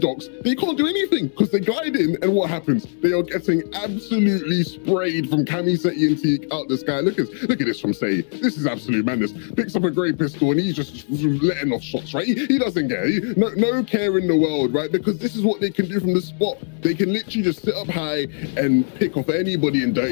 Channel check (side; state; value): right; silent; 65 dB below the other